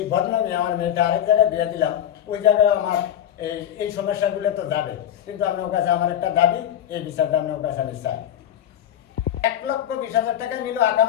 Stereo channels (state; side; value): quieter; right; 10.5 dB